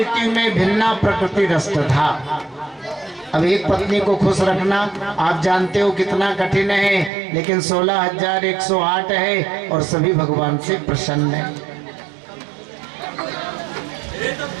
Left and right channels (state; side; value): drops out; left; at 7.1 s